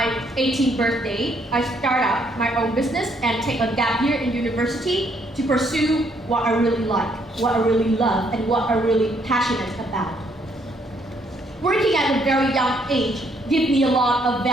18th birthday, I started up my own business and take a gap year in university to pursue what I really like, what I really love, and what I'm really passionate about. Working at a very young age gives me a lot of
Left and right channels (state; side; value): normal; both; correlation 0.70